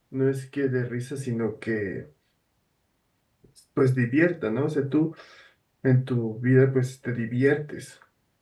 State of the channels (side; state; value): both; identical; correlation 1.00